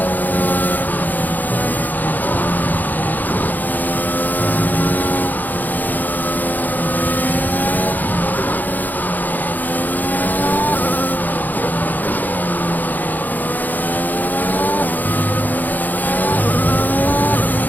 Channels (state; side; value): late; right; 0.084 ms